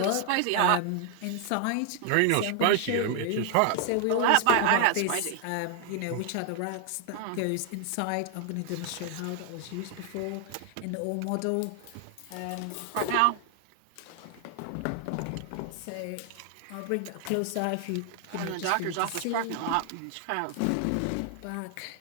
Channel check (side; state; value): both; different; correlation 0.00